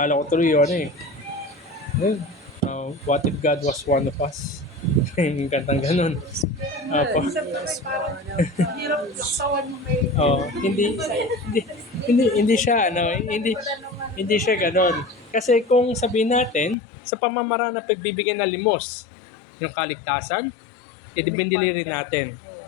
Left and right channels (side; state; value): right; drops out; at 16.8 s